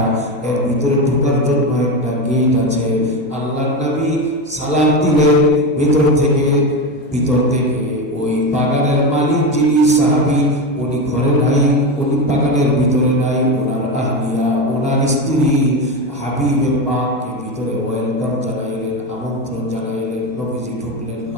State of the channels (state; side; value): normal; both; correlation 0.17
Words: এর ভিতরে ঢোকার জন্য একটা গেট আছে। আল্লাহর নবী সালাম দিলেন ভিতর থেকে ওই বাগানের মালিক যিনি সাহাবী, উনি ঘরে নাই, উনি বাগানের ভিতরে নাই। ওনার আহলিয়া, ওনার স্ত্রী হাবিবের মাকে ভিতরে ওয়েলকাম জানাইলেন, আমন্ত্রণ জানাইলেন। নবীজি ঢুকলেন,